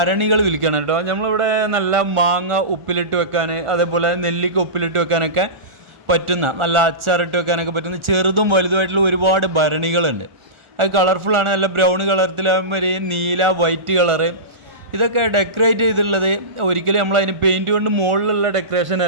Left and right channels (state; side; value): late; left; 1.4 ms